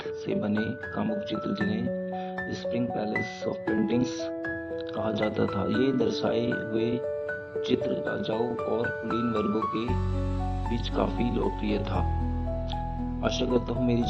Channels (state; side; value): identical; both; correlation 1.00